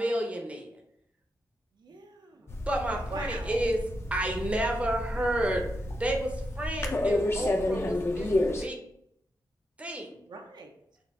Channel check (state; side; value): normal; both; correlation 0.85